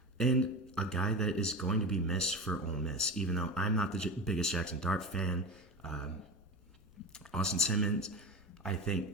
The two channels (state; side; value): normal; both; correlation 0.26